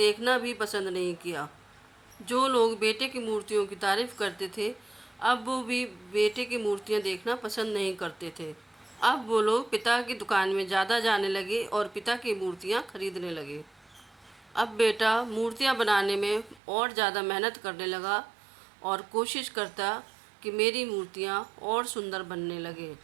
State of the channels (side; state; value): left; drops out; at 16.6 s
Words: भी पसंद नहीं किया। जो लोग बेटे की मूर्तियों की तारीफ करते थे, अब वो भी बेटे की मूर्तियाँ देखना पसंद नहीं करते थे। अब वो लोग पिता की दुकान में ज़्यादा जाने लगे और पिता की मूर्तियाँ खरीदने लगे। अब बेटा मूर्तियाँ बनाने में और ज़्यादा मेहनत करने लगा और कोशिश करता कि मेरी मूर्तियाँ और सुंदर बनने लगे।